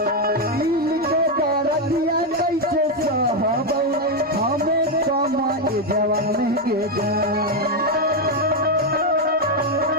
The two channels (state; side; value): normal; both; correlation 0.04